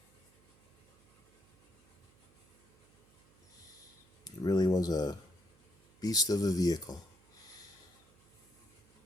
It really was a beast of a vehicle.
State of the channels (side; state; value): right; noise; hum, 29 dB below the sound